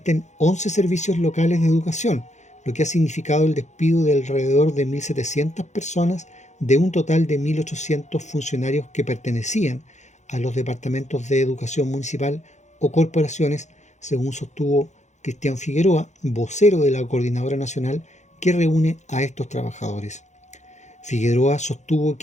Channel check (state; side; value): late; right; 0.34 ms